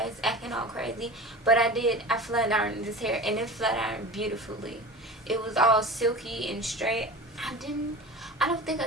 it's acting all crazy. But I flat ironed this hair, and it flat ironed beautifully. It was all silky and straight. I don't think I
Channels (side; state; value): both; normal; correlation 0.34